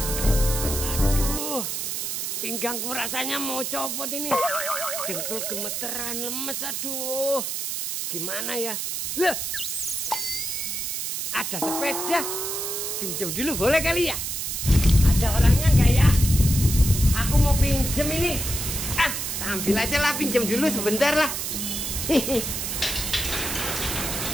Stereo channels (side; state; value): right; noise; hiss, 3 dB below the sound